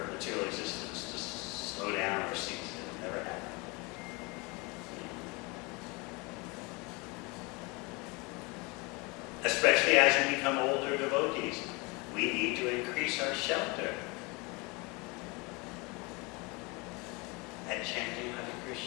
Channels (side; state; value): right; quieter; 27.4 dB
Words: material existence to slow down or cease. It'll never happen. Especially as we become older devotees, we need to increase our shelter at chanting Hare